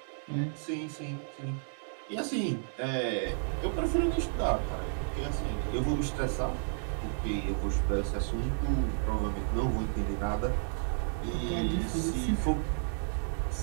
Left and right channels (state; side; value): silent; left; digital silence